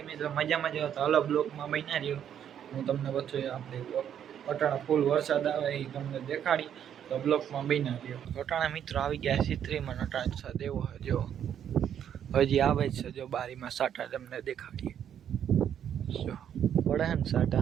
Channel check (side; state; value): left; quieter; 9.3 dB